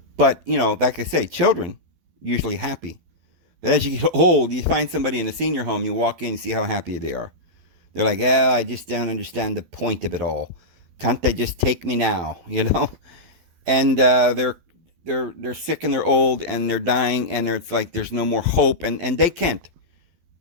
But, like I say, children usually happy. But as you get old, you find somebody in a senior home, you walk in and see how happy they are. They're like, I just don't understand the point of it all. Can't they just take me now, And they're sick and they're old and they're dying and it's like there's no more hope. And they can't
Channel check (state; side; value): late; left; 12 ms